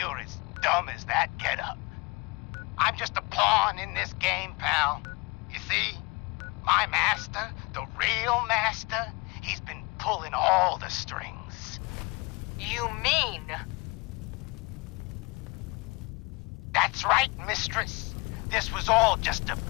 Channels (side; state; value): right; quieter; 27.5 dB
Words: as dumb as that getup. I'm just a pawn in this game, pal. You see, my master, the real master, he's been pulling all the strings. You mean? That's right, mistress. This was all just a